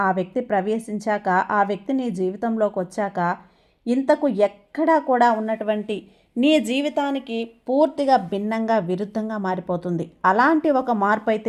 ఆ వ్యక్తి ప్రవేశించాక, ఆ వ్యక్తి నీ జీవితంలోకి వచ్చాక ఇంతకు ఎక్కడా కూడా ఉన్నటువంటి నీ జీవితానికి పూర్తిగా భిన్నంగా, విరుద్ధంగా మారిపోతుంది. అలాంటి ఒక మార్పు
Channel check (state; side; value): identical; both; correlation 1.00